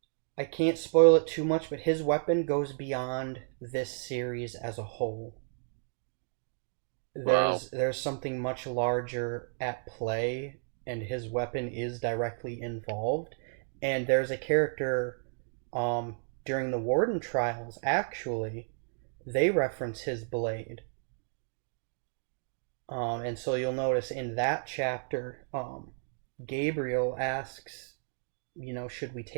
I can't spoil it too much, but his weapon goes beyond this series as a whole. Wow. There's something much larger at play, and his weapon is directly involved. And there's a character, um, during the Warden trials, actually, they reference his blade. And so you'll notice in that chapter, Gabriel asks, should we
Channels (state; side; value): silent; left; digital silence